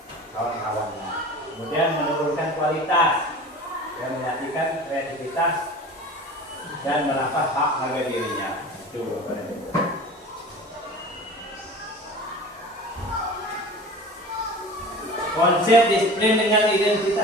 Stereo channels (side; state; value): both; normal; correlation 0.38